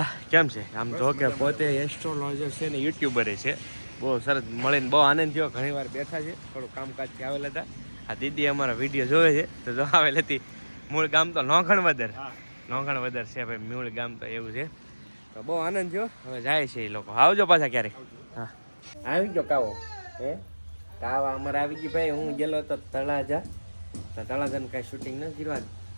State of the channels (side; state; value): both; inverted; correlation -1.00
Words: કેમ છે આમ જો કે પોતે એસ્ટ્રોલોજર છે ને યુટ્યુબરે છે બહુ સરસ મળીને બહુ આનંદ થયો ઘણી વાર બેઠા છે થોડું કામકાજથી આવેલા હતા આ દીદી અમારા વિડીયો જોવે છે તો જો આવેલી હતી મૂળ ગામ તો લોખણ વધર છે ભાઈ મૂળ ગામ તો એવું છે તો બહુ આનંદ થયો હવે જાય છે એ લોકો આવજો પાછા ક્યારેક હા આવી ગયો કાવો હે કાવા અમારે આવી ગઈ ભાઈ હું ગયેલો હતો તળાજાને કાંઈ શૂટિંગ ન કરવા